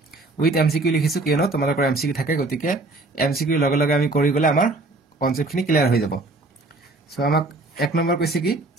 with MCQ লিখিছো কিয়নো তোমালোকৰ MCQ থাকে গতিকে MCQ লগে লগে আমি কৰি গলে আমাৰ কনসেপ্ট খিনি ক্লিয়াৰ হৈ যাব সো আমাক এক নম্বৰ কৈছে কি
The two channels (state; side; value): quieter; left; 3.0 dB